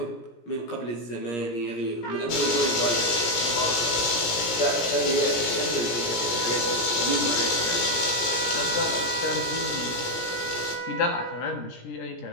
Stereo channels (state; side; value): late; right; 17 ms